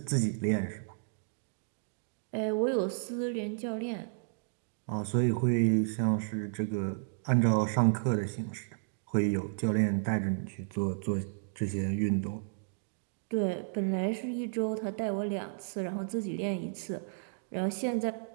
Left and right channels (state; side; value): silent; left; digital silence